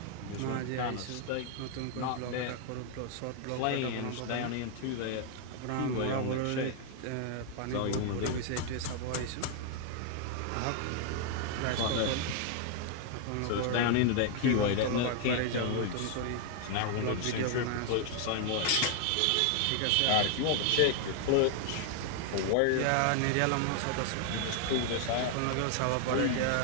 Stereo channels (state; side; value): different; both; correlation 0.00